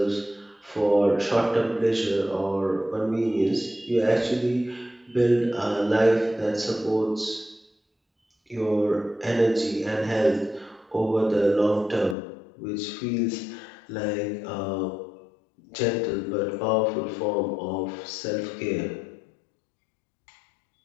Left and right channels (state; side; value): drops out; right; at 12.2 s